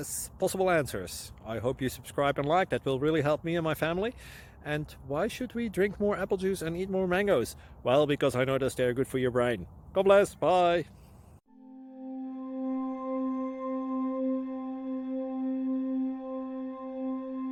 possible answers. I hope you subscribe and like, that will really help me and my family. And why should we drink more apple juice and eat more mangoes? Well, because I noticed they're good for your brain. God bless, bye!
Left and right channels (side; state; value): both; identical; correlation 1.00